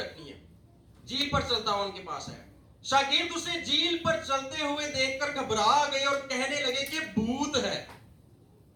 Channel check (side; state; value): both; identical; correlation 1.00